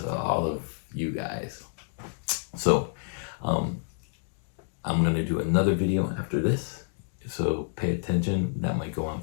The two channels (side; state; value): right; silent; digital silence